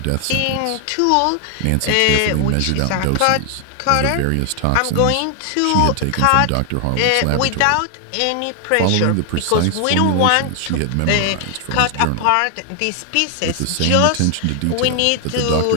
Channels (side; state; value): both; different; correlation 0.00